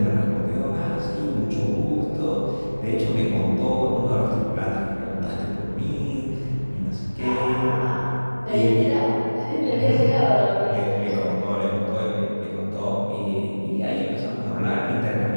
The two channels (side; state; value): both; inverted; correlation -1.00